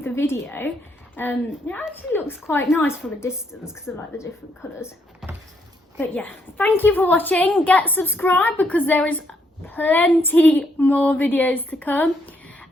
the video. It actually looks quite nice from a distance because I like the different colours. But yeah, thank you for watching. Get subscribed because there is plenty more videos to come.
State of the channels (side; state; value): both; normal; correlation 0.74